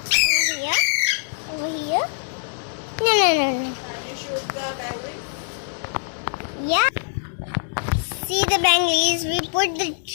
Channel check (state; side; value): silent; right; digital silence